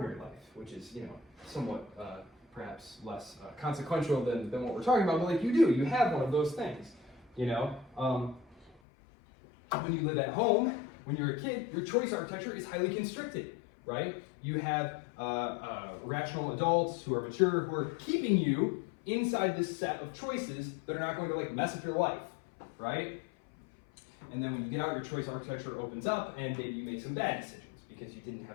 life, which is, somewhat perhaps less consequential than what we're talking about, but like you have one of those things, When you live at home, when you're a kid, your choice architecture is highly constricted, right? You have rational adults who are mature, who are keeping you inside this set of choices that are not going to like mess up your life, right? And then when you get out, your choice architecture opens up, and maybe you make some bad decisions because you didn't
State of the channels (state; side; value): drops out; right; at 8.8 s